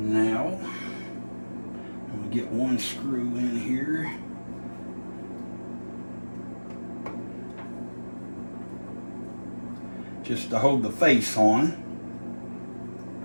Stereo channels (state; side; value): inverted; both; correlation -1.00